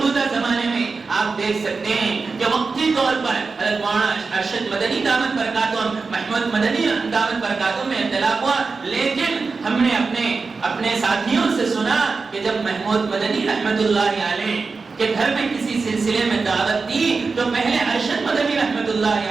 زمانے میں آپ دیکھ سکتے ہیں کہ وقتی طور پر حضرت مولانا ارشد مدنی دامت برکاتہم، محمود مدنی دامت برکاتہم میں اختلاف ہوا، لیکن ہم نے اپنے ساتھیوں سے سنا کہ جب محمود مدنی رحمت اللہ علیہ کے گھر میں کسی سلسلے میں دعوت دی تو پہلے ارشد مدنی رحمت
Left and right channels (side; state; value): left; quieter; 4.4 dB